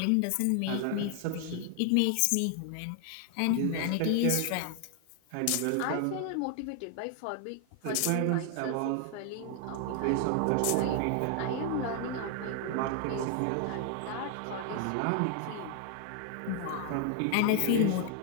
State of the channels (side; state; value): both; different; correlation 0.00